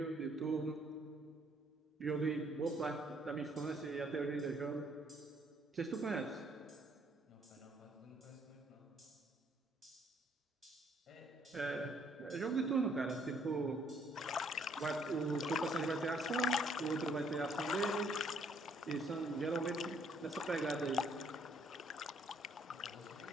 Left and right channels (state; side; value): normal; both; correlation 0.66